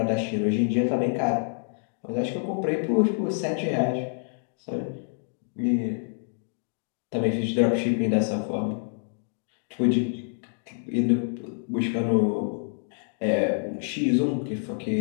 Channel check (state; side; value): silent; right; digital silence